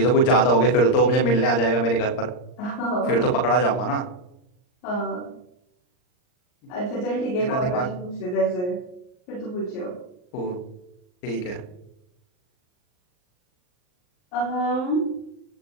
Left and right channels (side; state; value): right; late; 39 ms